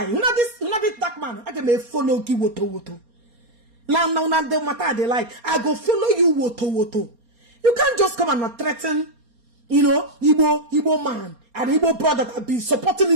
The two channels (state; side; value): late; left; 4.3 ms